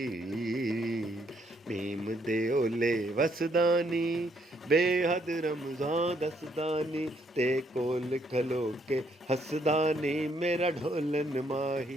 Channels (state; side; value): normal; both; correlation 0.71